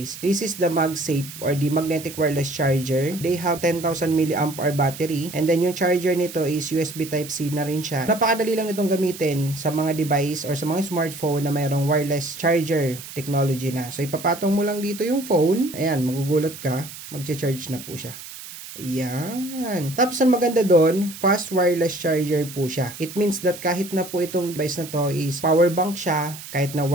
This is the MagSafe or the magnetic wireless charger. They have 10,000 mAh battery, and then yung charger nito is USB Type-C na rin siya. Napakadali lang nitong gamitin sa mga device or sa mga smartphone na mayroong wireless charger technology na. So ipapatong mo lang dito yung phone, ayan, magugulat ka, magche-charge na po siya. Ayan. Tapos ang maganda doon, fast wireless charger po siya. It means that kahit na po itong device na to is power bank siya, kahit na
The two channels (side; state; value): right; noise; hiss, 13 dB below the sound